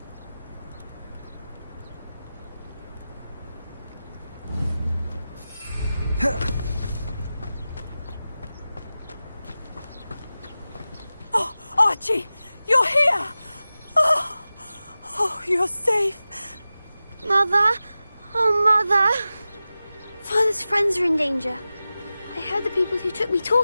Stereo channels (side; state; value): both; inverted; correlation -0.94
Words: Oh, Archie, you're here! Oh, you're safe. Mother? Oh, Mother. Father's friends are in danger. I heard the people who took me